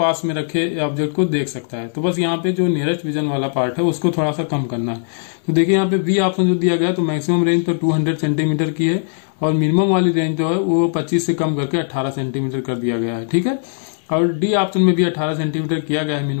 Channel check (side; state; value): right; silent; digital silence